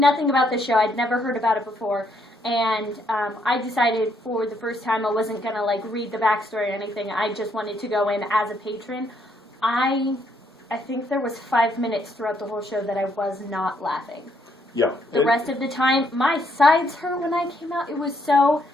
about the show. I'd never heard about it before. And I decided for the first time I wasn't going to like read the backstory or anything. I just wanted to go in as a patron. I think there was 5 minutes throughout the whole show that I was not laughing. Yeah. The rest of the time, my sides hurt when I came out. It was so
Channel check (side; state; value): both; normal; correlation 0.72